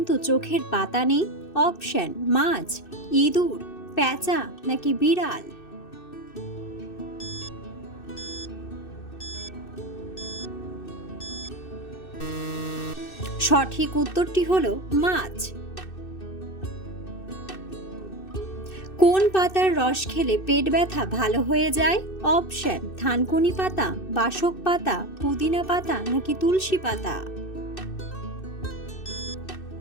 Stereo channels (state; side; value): late; right; 2.6 ms